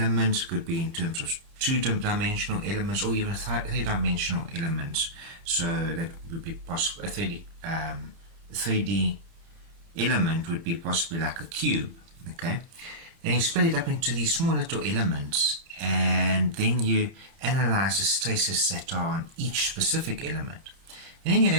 could be in terms of two-dimensional elements, or even three-dimensional elements. So that would be possible. A 3D element would be possibly like a cube. Okay, and you split it up into these small little elements, and then you analyze the stresses that are on each specific element. And then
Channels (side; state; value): left; late; 30 ms